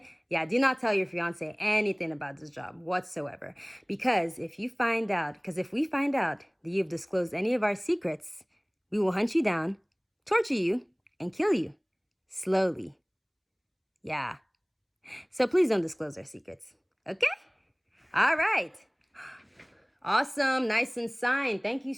Yeah, do not tell your fiance anything about this job whatsoever. Because if we find out that you've disclosed any of our secrets, we will hunt you down, torture you, and kill you. Slowly. Yeah. So please don't disclose our secrets. Okay? All right. Awesome. Nice and signed. Thank you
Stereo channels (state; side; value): identical; both; correlation 1.00